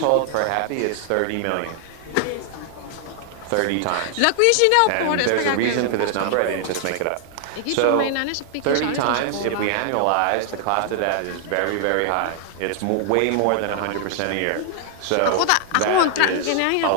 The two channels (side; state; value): both; different; correlation 0.00